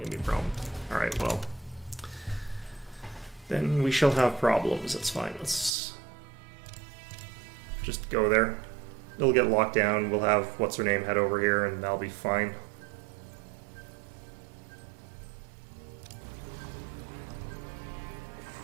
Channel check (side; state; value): left; drops out; at 5.7 s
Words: to be a problem. Alright, well. Then we shall have problems. That's fine. Let's just go there. It'll get locked down. We'll have what's-her-name head over here, and that'll be fine.